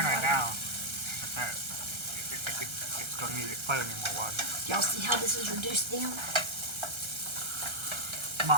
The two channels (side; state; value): left; late; 1.3 ms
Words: right now. It's going to need plenty more water. Y'all see how this is reduced down? Come